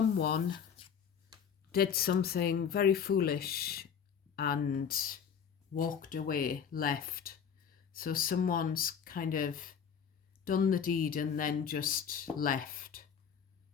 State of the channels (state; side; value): quieter; right; 7.4 dB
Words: did something very foolish and walked away, left. So someone's kind of done the deed and then just left.